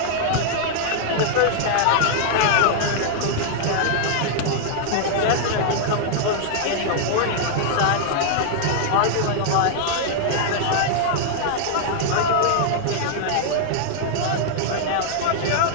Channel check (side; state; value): both; different; correlation -0.01